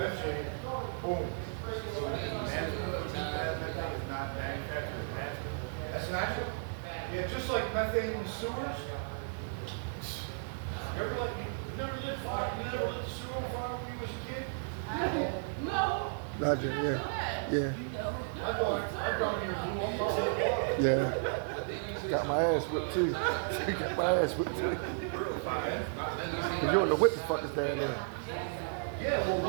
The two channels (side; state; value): left; silent; 55 dB below the other